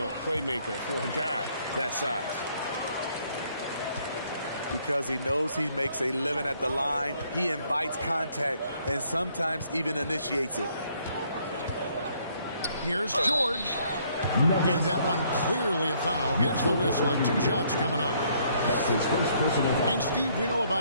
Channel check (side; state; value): both; inverted; correlation -0.66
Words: playmaker for a guy that size. Because he knows he makes a living at the line, he invites contact and sometimes even initiates it. Here's George. And that one clearly a foul. Gets the whistle and 2 shots coming up. That's his first personal foul. And Steve, we know